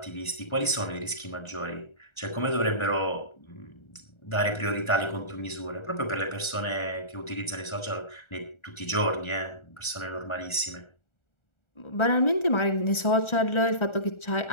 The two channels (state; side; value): late; right; 1.4 ms